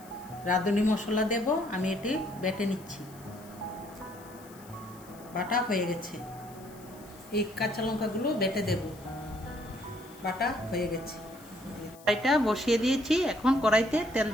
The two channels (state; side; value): noise; left; hiss, 23 dB below the sound